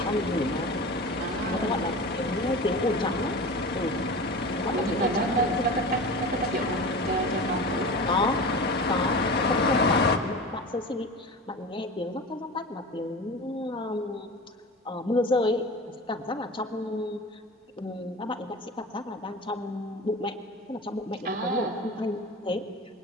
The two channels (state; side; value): normal; both; correlation 0.32